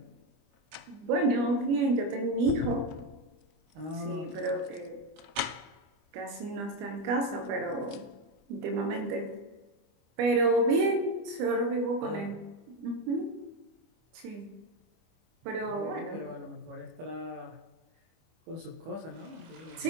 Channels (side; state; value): left; late; 25 ms